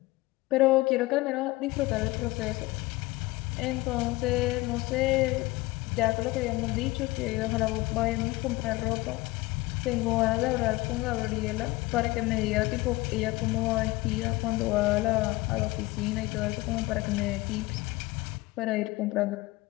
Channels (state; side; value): quieter; right; 20.6 dB